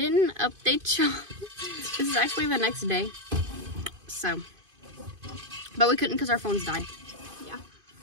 update y'all. This is actually the next day. So, but we couldn't because our phones died. Yeah.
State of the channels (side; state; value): left; late; 2.5 ms